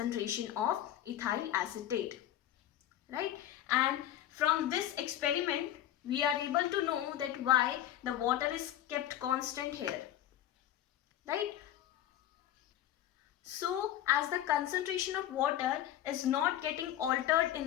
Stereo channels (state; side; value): quieter; right; 12.2 dB